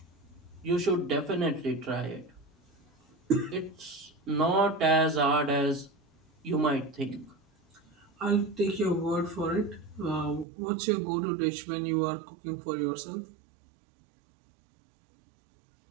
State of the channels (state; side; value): drops out; left; at 10.5 s